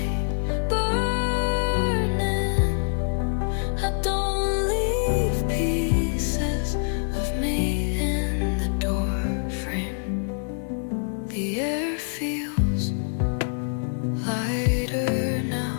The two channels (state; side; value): silent; right; 60 dB below the other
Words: burning. I don't leave pieces of me in the door frame. The air feels lighter